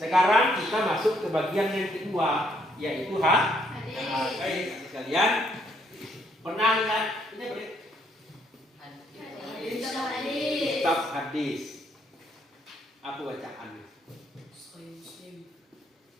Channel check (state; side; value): normal; both; correlation 0.71